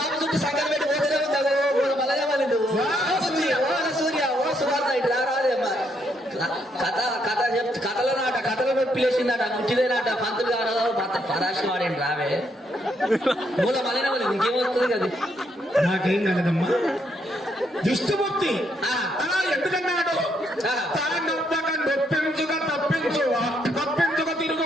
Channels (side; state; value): both; normal; correlation 0.75